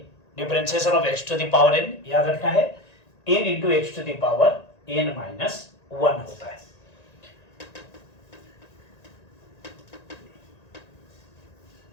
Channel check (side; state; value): right; late; 1.9 ms